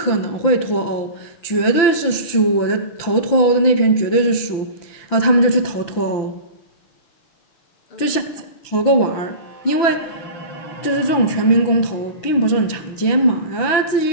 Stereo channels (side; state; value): right; late; 6.0 ms